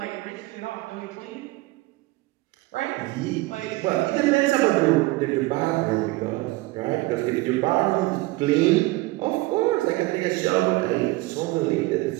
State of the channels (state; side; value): quieter; left; 20.7 dB